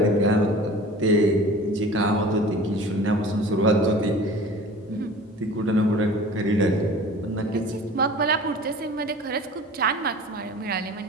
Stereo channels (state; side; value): normal; both; correlation 0.41